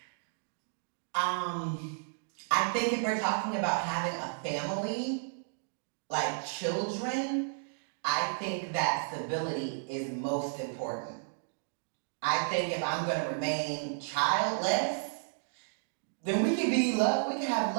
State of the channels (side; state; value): left; silent; digital silence